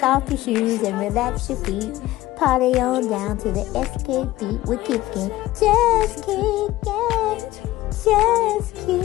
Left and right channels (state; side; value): quieter; right; 16.4 dB